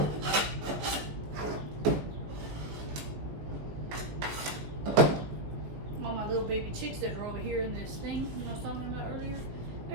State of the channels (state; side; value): late; left; 19 ms